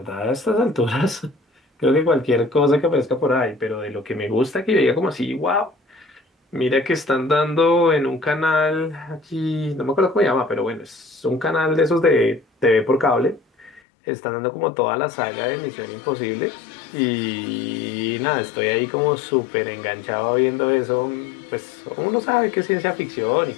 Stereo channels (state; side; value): drops out; right; at 13.8 s